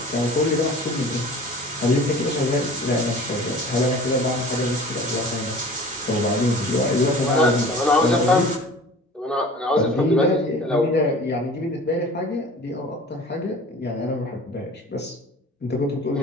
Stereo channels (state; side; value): normal; both; correlation 0.43